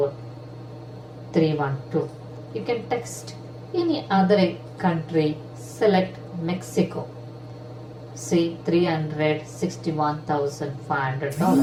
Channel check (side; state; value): both; identical; correlation 1.00